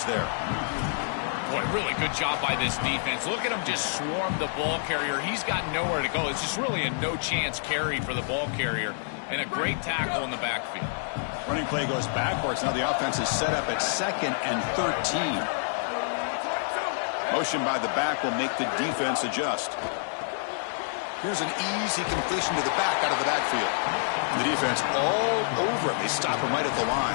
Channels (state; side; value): silent; right; digital silence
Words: there. Boy, really good job by this defense. Look at him just swarm the ball carrier. He's got nowhere to go. It's just really a no-chance carry for the ball carrier. And a great tackle in the backfield. Running play goes backwards. Now the offense is set up at 2nd and 13. Motion by the back will make the defense adjust. Here's an easy completion to the back out of the backfield. The defense all over it. They stop him right at the